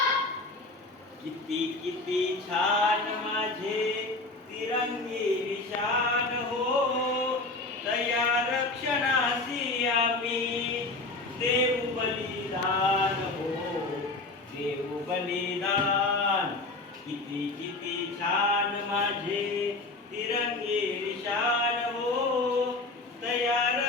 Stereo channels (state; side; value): quieter; right; 3.2 dB